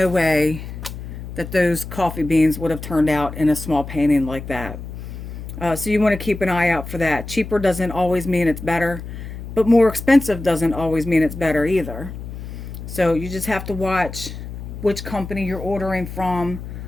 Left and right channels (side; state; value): left; noise; hum, 10 dB below the sound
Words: way that those coffee beans would have turned out in a small painting like that. So you want to keep an eye out for that. Cheaper doesn't always mean it's better, but more expensive doesn't always mean it's better either. So you just have to watch which company you're ordering from,